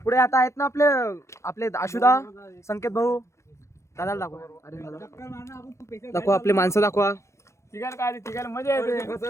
पुढे आता आहेत ना आपले आपले आशुदा, संकेत भाऊ. दादाला दाखवा. अरे दादा दाखवा, आपले माणसं दाखवा. मजा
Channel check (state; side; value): late; right; 0.14 ms